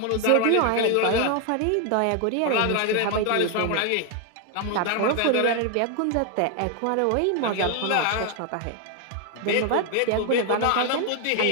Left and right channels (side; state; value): both; different; correlation 0.01